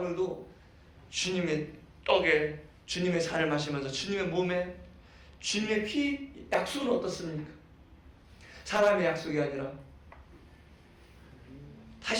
주님의 떡에, 주님의 잔을 마시면서 주님의 몸에, 주님의 피, 약속은 어떻습니까? 사람의 약속이 아니라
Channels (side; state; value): both; identical; correlation 1.00